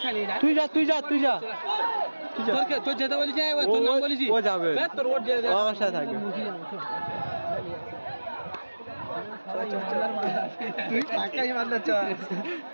নেই, তুই যা তোর যেতে বলিস, তোর নাম বলিস, ও যাবে তোর ওর আমার সাথে থাকবে। তুই পাক্কাই মারনা চ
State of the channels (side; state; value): both; inverted; correlation -1.00